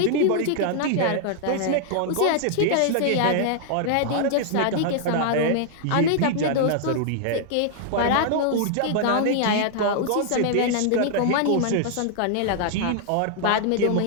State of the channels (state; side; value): different; both; correlation -0.01